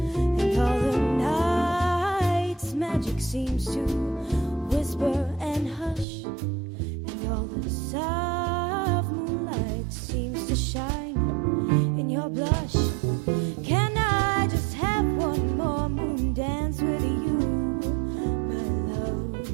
all the night's magic seems to whisper and hush, and all the soft moonlight seems to shine in your blush. Can I just have one more moon dance with you, my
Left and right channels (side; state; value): left; drops out; at 6.1 s